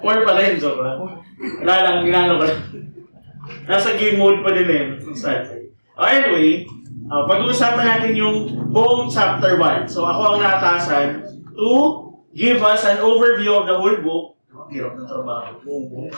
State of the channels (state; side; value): inverted; both; correlation -1.00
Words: pa rin, joke lang. Wala lang, ginano ko lang. Nasa game mode pa din eh. Anyway, pag-uusapan natin yung buong chapter 1. So, ako ang naatasan to give us an overview of the whole book. Hirap ng trabaho.